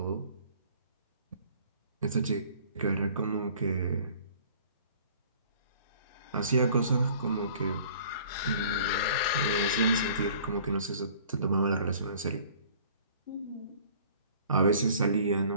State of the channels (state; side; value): inverted; both; correlation -0.52